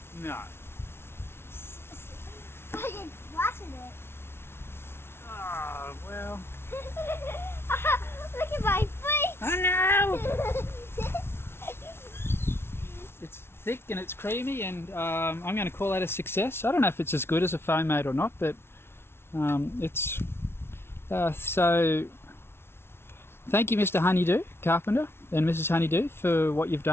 No. I can splash in it. Oh, well. Look at my feet. Oh no! It's thick and it's creamy, and I'm going to call that a success. I don't know if it's as good as a Foam Mate or not, but it's so. Thank you, Mr HoneyDo Carpenter and Mrs HoneyDo, for what you've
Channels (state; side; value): late; right; 0.12 ms